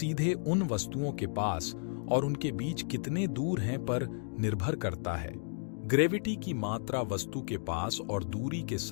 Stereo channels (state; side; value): silent; right; digital silence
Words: उन वस्तुओं के पास और उनके बीच कितने दूर हैं पर निर्भर करता है। ग्रेविटी की मात्रा वस्तु के पास और दूरी के